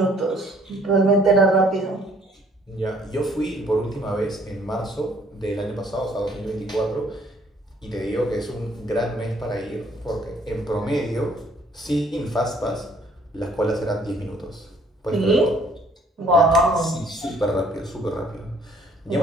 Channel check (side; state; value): both; normal; correlation 0.61